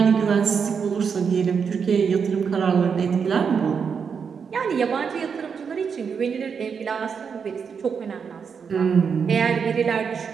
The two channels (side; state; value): left; quieter; 6.3 dB